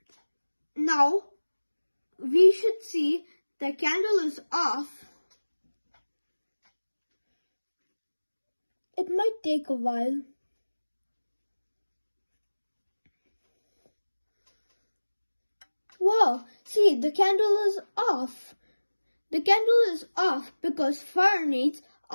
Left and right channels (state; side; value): inverted; both; correlation -1.00